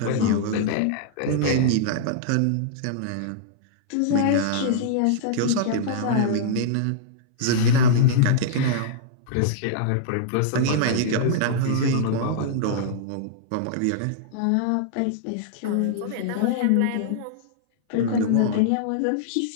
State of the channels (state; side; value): different; both; correlation -0.02